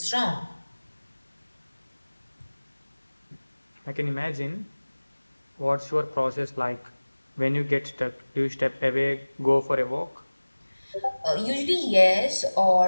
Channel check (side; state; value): both; inverted; correlation -1.00